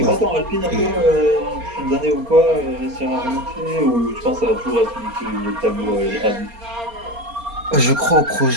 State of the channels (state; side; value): late; left; 4.3 ms